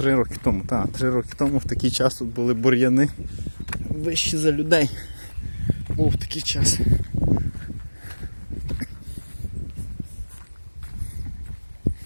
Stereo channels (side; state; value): both; inverted; correlation -1.00